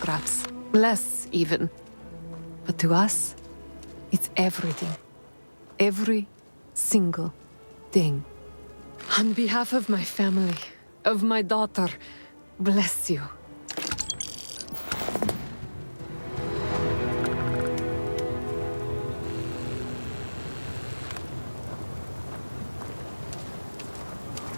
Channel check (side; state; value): both; inverted; correlation -1.00